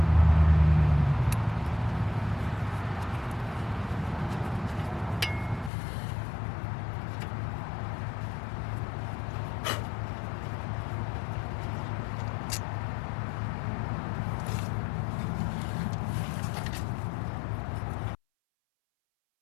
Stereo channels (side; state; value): right; drops out; at 5.7 s